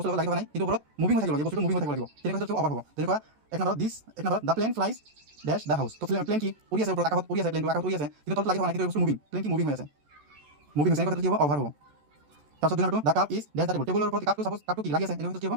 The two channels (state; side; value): late; left; 14 ms